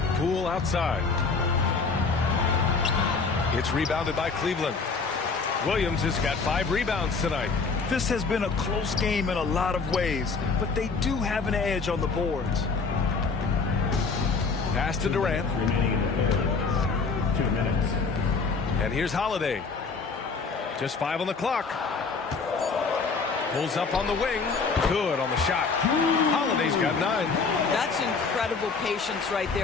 Poole outside. It's rebounded by Cleveland. Williams has got 5 rebounds tonight. This has been a close game in a lot of ways, but they do have an edge on the boards. Pass to Durant. Remaining in the third. 2 minutes. And here's Holiday. Just 5 on the clock. Pulls up on the wing. Good on the shot. Holiday's got 9. That's incredible patience right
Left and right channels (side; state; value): right; quieter; 4.6 dB